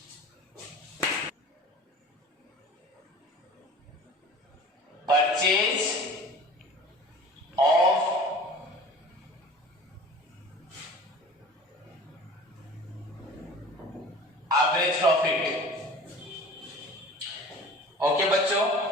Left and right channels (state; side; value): normal; both; correlation 0.42